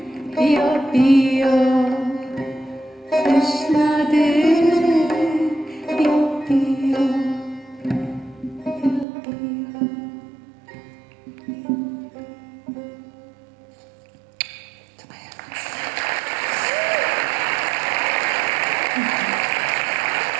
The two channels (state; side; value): drops out; left; at 9.1 s